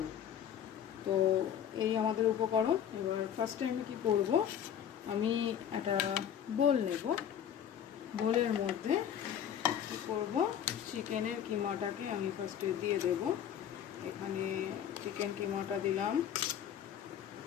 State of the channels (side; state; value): right; quieter; 9.4 dB